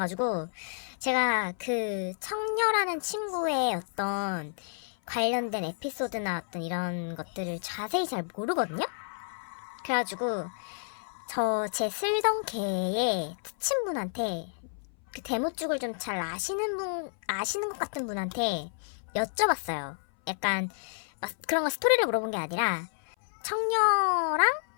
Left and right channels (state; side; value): silent; right; 58 dB below the other